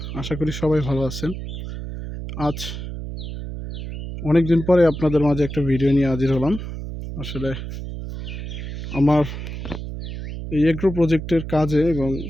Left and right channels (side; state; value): right; noise; hum, 7 dB below the sound